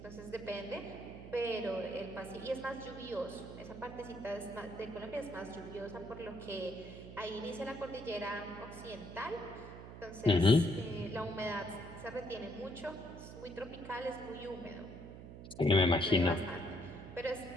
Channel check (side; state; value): right; noise; hum, 12 dB below the sound